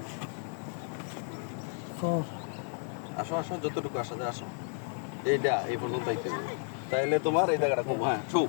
4 আসো আসো, যতটুকু আসা যায় আসো। এইটা এই পর্যন্ত আইতে হবে। তাইলে তোমার এই জায়গাটা কম। হ্যাঁ শো।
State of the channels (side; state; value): right; silent; 56 dB below the other